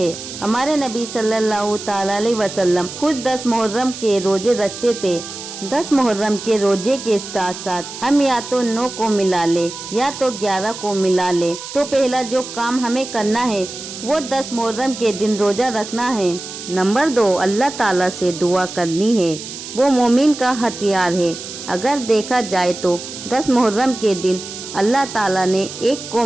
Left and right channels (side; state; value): right; noise; hiss, 11 dB below the sound